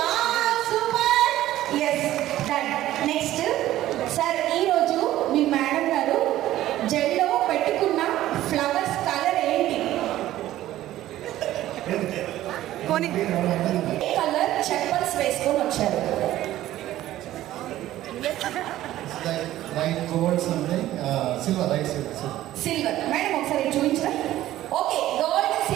super. Yes done. Next sir ఈరోజు మీ మేడం గారు జెల్లో పెట్టుకున్న ఫ్లవర్స్ కలర్ ఏంటి? కలర్ చెప్పల్స్ వేసుకొని వచ్చారు. సిల్వర్ మేడం ఒకసారి చూపించరా? ఓకే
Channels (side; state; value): left; quieter; 14.2 dB